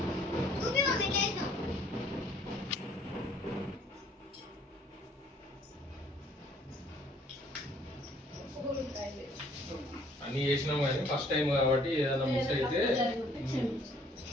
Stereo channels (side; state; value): both; normal; correlation 0.60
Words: అన్ని చేసినాం కానీ ఫస్ట్ టైం కాబట్టి ఏదైనా మిస్ అయితే